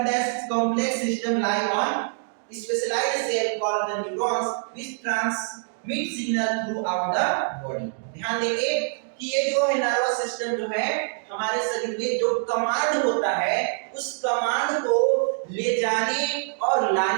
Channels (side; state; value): left; silent; digital silence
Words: that complex system lie on specialized cell called the neurons which transmit signal throughout the body. ध्यान देंगे कि ये जो है नर्वस सिस्टम जो है हमारे शरीर में जो कमांड होता है उस कमांड को ले जाने और